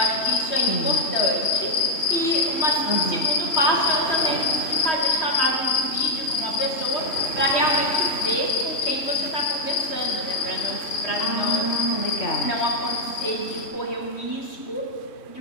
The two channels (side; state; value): right; late; 3.1 ms